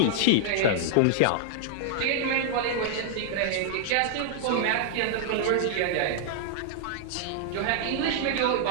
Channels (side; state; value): both; different; correlation -0.01